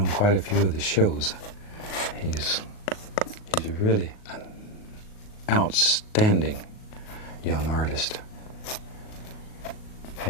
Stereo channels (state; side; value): late; right; 38 ms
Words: quite a few of the shows. He's really an outstanding young artist.